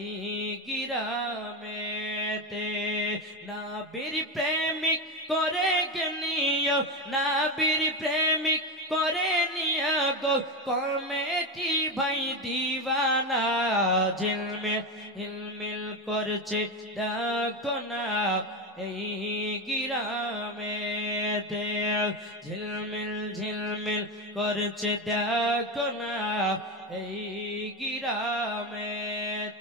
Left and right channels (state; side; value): normal; both; correlation 0.15